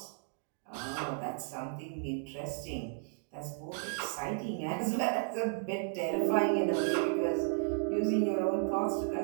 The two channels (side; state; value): left; silent; 55 dB below the other